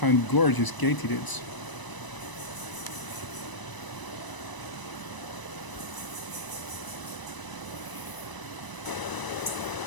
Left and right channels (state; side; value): late; right; 1.0 ms